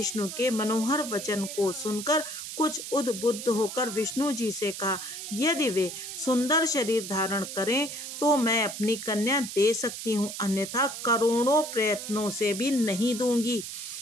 के मनोहर वचन को सुनकर कुछ उद्बुद्ध होकर विष्णु जी से कहा, यदि वे सुंदर शरीर धारण करें तो मैं अपनी कन्या दे सकती हूँ, अन्यथा करोड़ों प्रयत्नों से भी नहीं दूंगी।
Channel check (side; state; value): right; noise; hiss, 8 dB below the sound